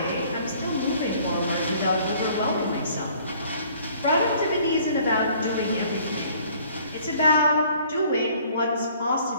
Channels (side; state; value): both; inverted; correlation -0.56